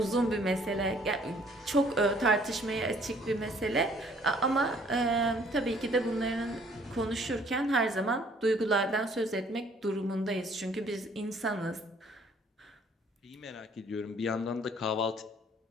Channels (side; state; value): both; normal; correlation 0.60